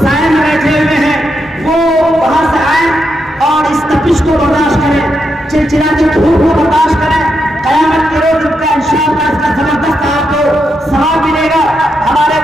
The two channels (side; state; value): both; normal; correlation 0.83